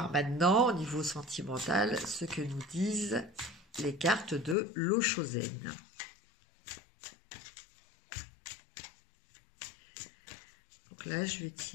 maintenant, au niveau sentimental, ce que nous disent les cartes de l'Oshōzen. Donc là, je vais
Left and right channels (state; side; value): drops out; right; at 4.5 s